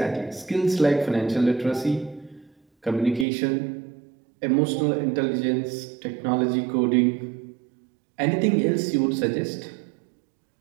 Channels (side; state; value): left; drops out; at 3.2 s